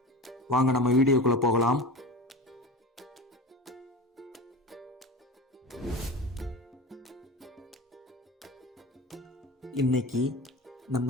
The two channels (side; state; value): both; normal; correlation 0.31